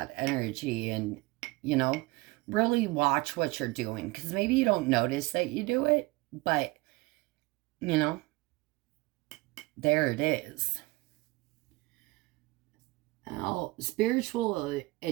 energy and, you know, really watch what you're doing. Because maybe you don't notice that you do it, but you know, there it is. Now, spiritual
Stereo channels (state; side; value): quieter; left; 22.6 dB